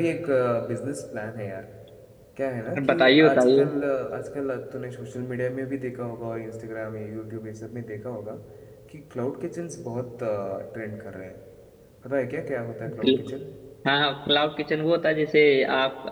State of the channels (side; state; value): both; identical; correlation 1.00